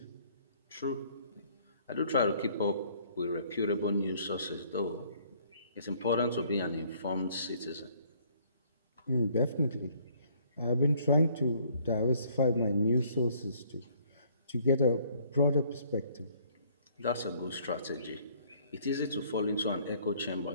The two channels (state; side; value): inverted; both; correlation -0.61